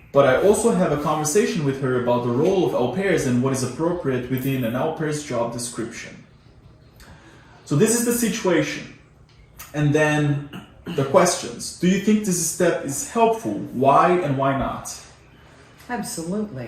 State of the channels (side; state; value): both; identical; correlation 1.00